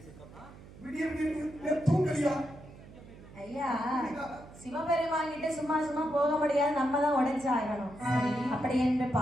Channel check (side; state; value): right; noise; hum, 19 dB below the sound